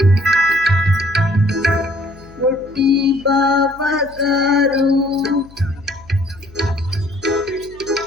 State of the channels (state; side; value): noise; left; hum, 23 dB below the sound